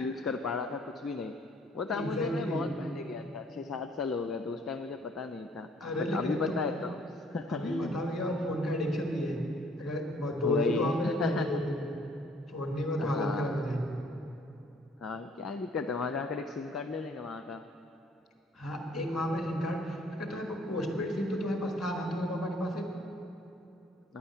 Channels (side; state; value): both; normal; correlation 0.60